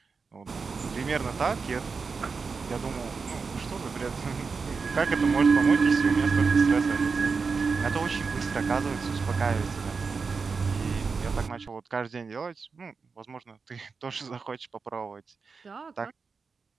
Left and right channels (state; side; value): quieter; left; 4.9 dB